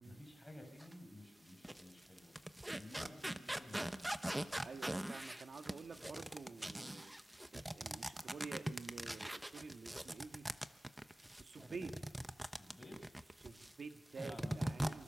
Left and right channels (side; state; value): both; normal; correlation 0.98